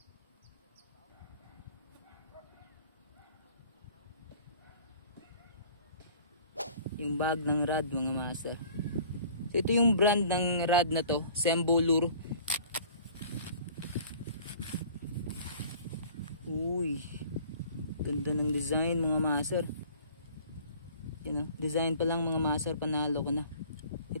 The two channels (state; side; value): inverted; both; correlation -0.49